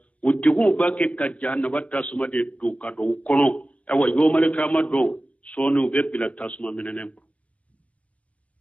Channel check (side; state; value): right; late; 0.064 ms